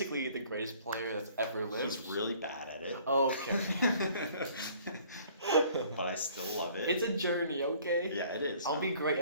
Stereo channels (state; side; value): inverted; both; correlation -0.55